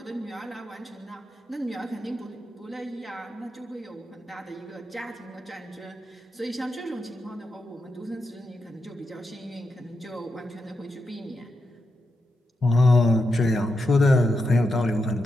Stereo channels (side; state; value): both; normal; correlation 0.86